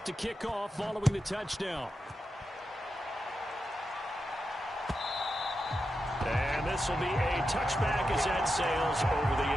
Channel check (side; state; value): both; normal; correlation 0.88